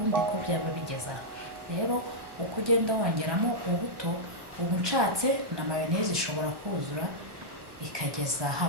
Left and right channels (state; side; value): late; left; 1.2 ms